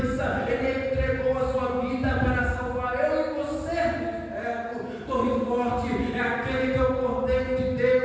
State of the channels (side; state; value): both; identical; correlation 1.00